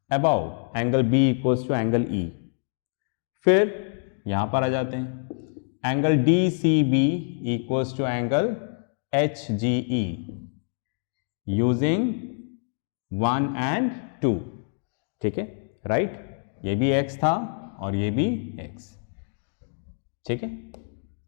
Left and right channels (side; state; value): right; silent; digital silence